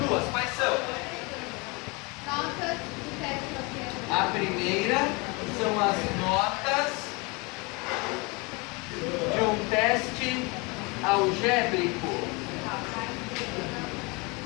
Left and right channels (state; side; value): quieter; right; 27.4 dB